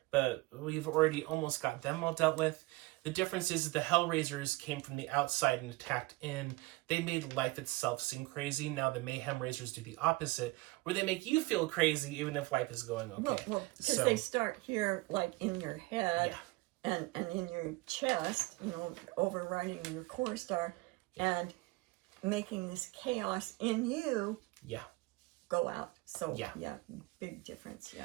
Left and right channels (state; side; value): quieter; left; 22.5 dB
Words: but we've already almost got them all dealt with. The difference is the Hellraisers came from the outside and attacked in. They made life itself seem crazy. Now the Mayhem Raisers do the opposite, where they make you feel crazy even if life is going okay. Well, because they start here, like, in your head and in your chest, overriding your core star, and making this chaos in you go out. So, big difference,